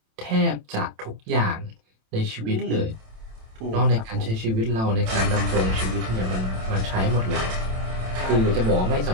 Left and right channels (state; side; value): late; left; 27 ms